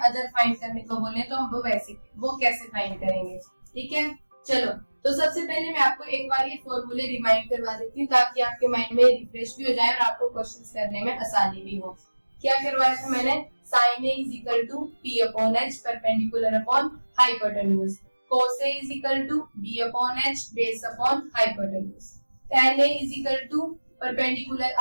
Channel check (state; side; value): inverted; both; correlation -1.00